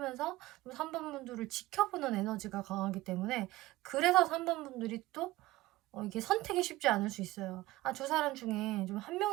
3번 분들을 지켜보는 에너지가 강하기 때문에 그래서 3번 분들이 또 이게 선택이 쉽지 않을 수 있어요. 2사람 중에 좀 한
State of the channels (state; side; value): quieter; left; 18.0 dB